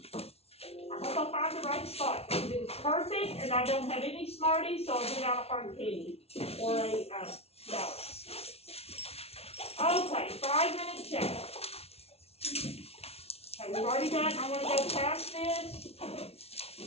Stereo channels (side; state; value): right; late; 0.30 ms